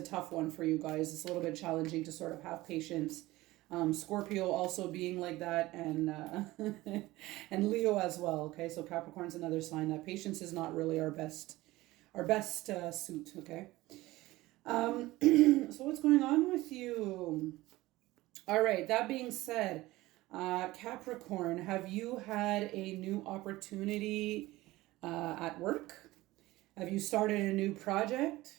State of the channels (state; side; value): quieter; left; 18.5 dB